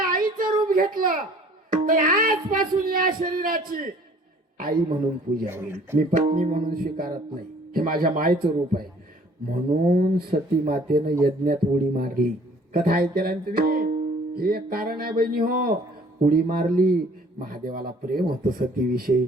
आईचं रूप घेतलं तर आजपासून या शरीराची आई म्हणून पूजा होईल. मी पत्नी म्हणून स्वीकारत नाही. हे माझ्या मायचं रूप आहे. म्हणून सती मातेनं यज्ञात उडी मारली. कथा ऐकला ना तुम्ही? हे एक कारण आहे बहिणी हो. उडी मारली. महादेवाला प्रेम होतं सतीविषयी.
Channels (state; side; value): normal; both; correlation 0.54